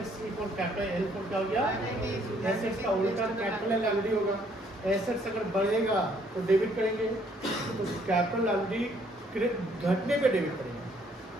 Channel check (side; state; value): both; normal; correlation 0.65